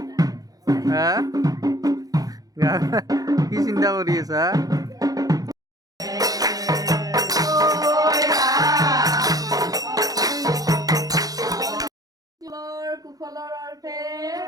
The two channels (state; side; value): late; left; 0.18 ms